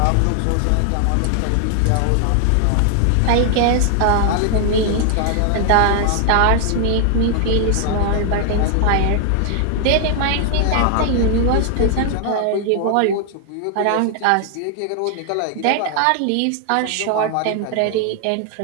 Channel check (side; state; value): both; different; correlation 0.00